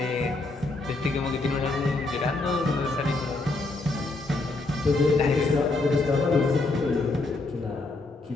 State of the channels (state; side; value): quieter; right; 3.3 dB